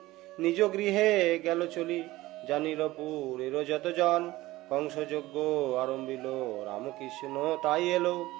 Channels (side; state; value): left; quieter; 18.0 dB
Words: নিজ গৃহে গেল চলি, জানিল পুরের যত জন কংস যজ্ঞ আরম্ভিল। রামকৃষ্ণ তাই এলো